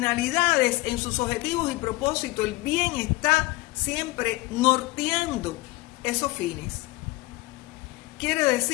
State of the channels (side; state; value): right; quieter; 20.7 dB